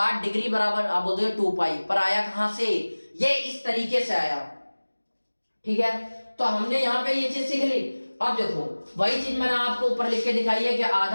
डिग्री बराबर, आप बोलते हो 2 पाई, पर आया कहां से, ये इस तरीके से आया, ठीक है। तो हमने यहाँ पे ये चीज सीख ली। अब देखो वही चीज मैंने आपको ऊपर लिख के दिखाई है कि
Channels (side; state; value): both; inverted; correlation -1.00